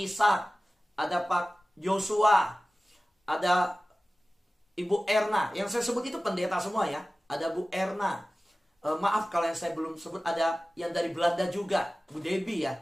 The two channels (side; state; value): both; normal; correlation 0.96